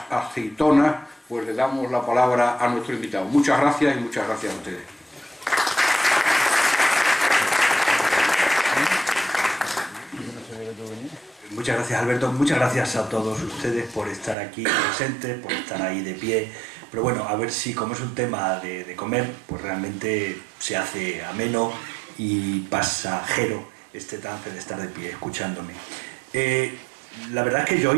aceitonas, pues le damos la palabra a nuestro invitado. Muchas gracias y muchas gracias a ustedes. Muchas gracias, Alberto. Muchas gracias a todos ustedes por estar aquí presentes, por estar ahí de pie. Pero bueno, a ver si, como es un tema de comer, pues realmente se hace ameno y pasajero este trance de estar de pie escuchándome. La verdad es que yo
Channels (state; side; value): drops out; left; at 14.4 s